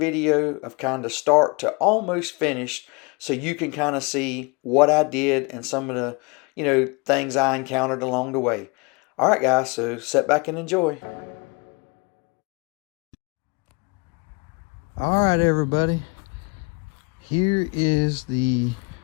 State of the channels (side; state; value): right; quieter; 29.8 dB